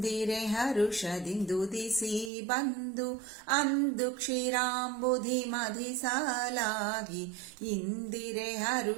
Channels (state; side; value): drops out; left; at 2.3 s